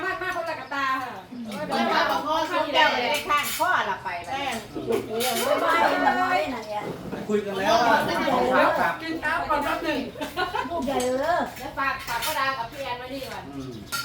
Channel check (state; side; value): identical; both; correlation 1.00